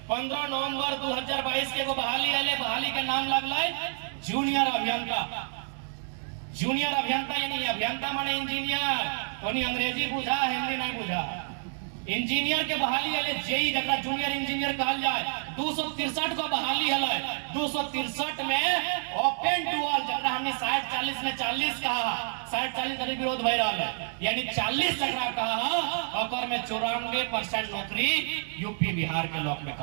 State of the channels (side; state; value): left; silent; 58 dB below the other